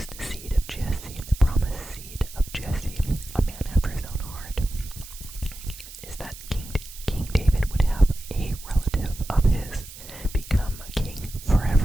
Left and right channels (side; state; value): right; noise; hiss, 15 dB below the sound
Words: seed of Jesse, a man after his own heart, is that King David would have a relative of his become a king